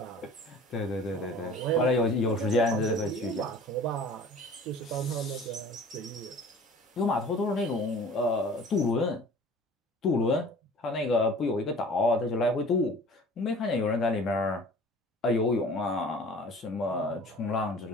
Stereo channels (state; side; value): normal; both; correlation 0.45